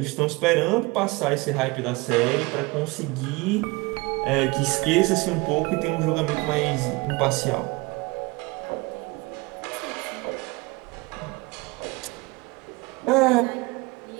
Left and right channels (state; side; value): quieter; left; 24.6 dB